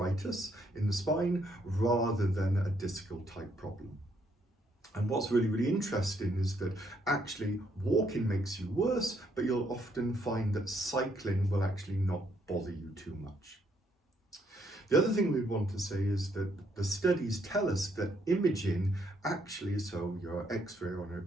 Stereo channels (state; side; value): normal; both; correlation 0.72